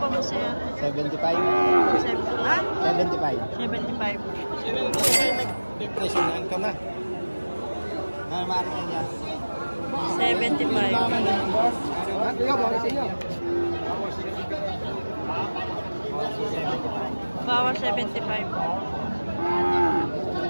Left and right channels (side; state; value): both; inverted; correlation -1.00